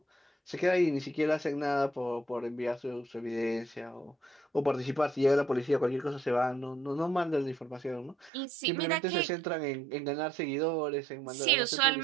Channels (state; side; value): drops out; left; at 8.3 s